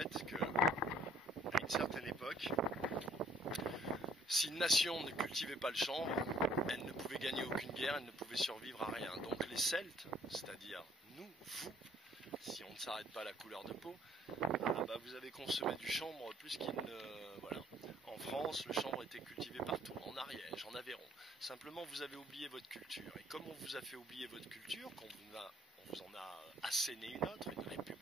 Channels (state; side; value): normal; both; correlation 0.61